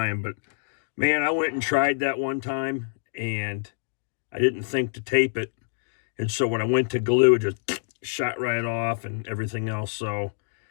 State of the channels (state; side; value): silent; right; digital silence